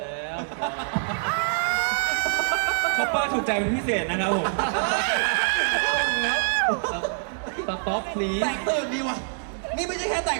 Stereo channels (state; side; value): silent; left; 62 dB below the other